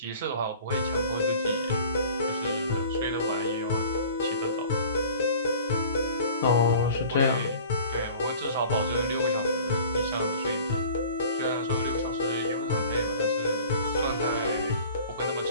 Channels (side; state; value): both; inverted; correlation -0.45